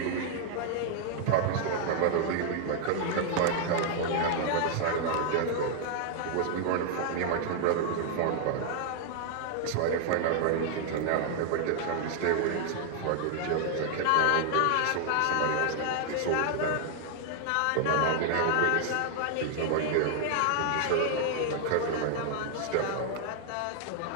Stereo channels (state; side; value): different; both; correlation 0.00